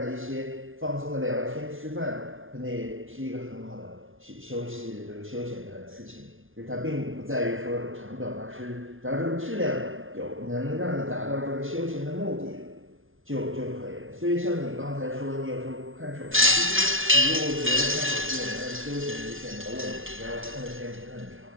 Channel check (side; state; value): left; late; 0.58 ms